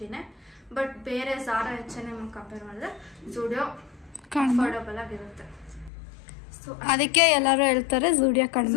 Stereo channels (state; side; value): drops out; right; at 5.9 s